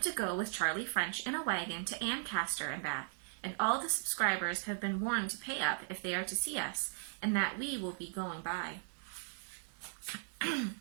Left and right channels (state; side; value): silent; left; digital silence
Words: to go with Charlie French in a wagon to Ancaster and back, and all the subscribers have been warned to pay up if they are to see us, and that we will be going by.